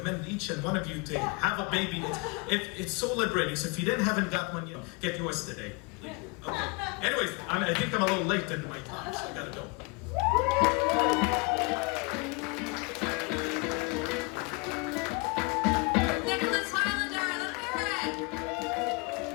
each and one of you to have a baby. It's so liberating. So if you haven't got one yet, get yours today. Okay. Anyways, I think I'm a little late into my talk, so I gotta go.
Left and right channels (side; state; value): right; quieter; 28.8 dB